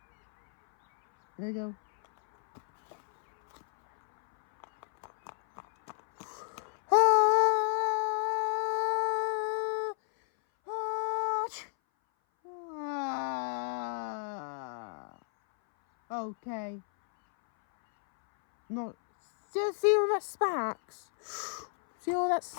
There we go. Okay. Not. See all that sparks? See all that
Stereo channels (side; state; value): right; silent; 57 dB below the other